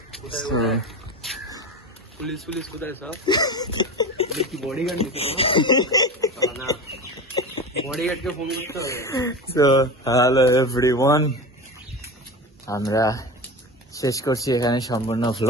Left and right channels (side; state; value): both; normal; correlation 0.27